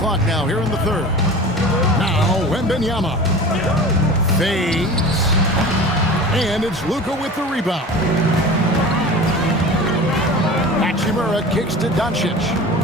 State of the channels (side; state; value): both; normal; correlation 0.36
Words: now here in the third. Now Wembanyama fades. And it's Luka with the rebound. Hachimura kicks to Doncic.